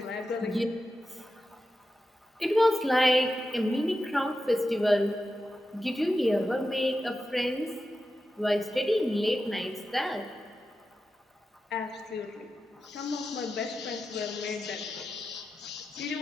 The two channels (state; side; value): normal; both; correlation 0.91